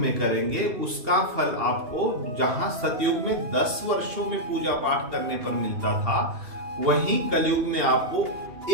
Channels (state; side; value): late; left; 2.8 ms